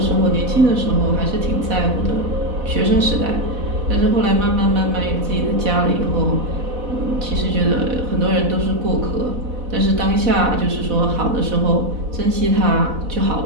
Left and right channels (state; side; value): late; left; 4.1 ms